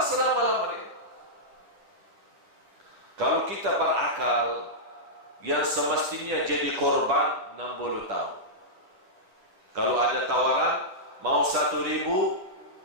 Kalau kita berakal, yang semestinya jadi korban 60 tahun. Kalau ada tawaran, mau 1000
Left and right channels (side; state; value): left; late; 10 ms